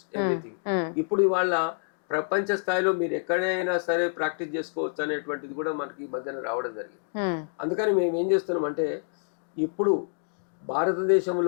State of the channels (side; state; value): right; silent; 60 dB below the other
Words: everything. ఇప్పుడు ఇవాళ ప్రపంచ స్థాయిలో మీరు ఎక్కడైనా సరే ప్రాక్టీస్ చేసుకోవచ్చు అనేటువంటిది కూడా మనకి ఈ మధ్యన రావడం జరిగింది. అందుకని మేము ఏం చేస్తున్నాం అంటే ఇప్పుడు